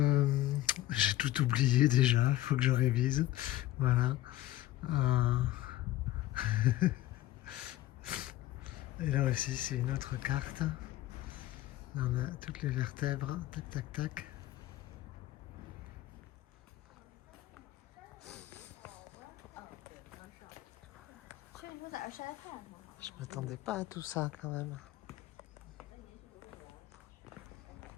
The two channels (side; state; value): right; quieter; 15.0 dB